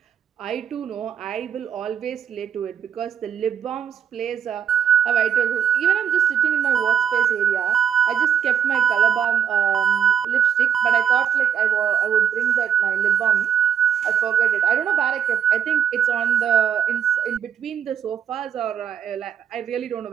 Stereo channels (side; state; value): left; quieter; 8.2 dB